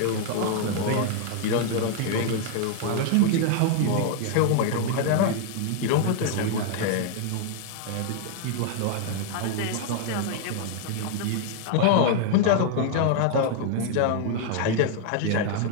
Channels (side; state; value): both; different; correlation 0.00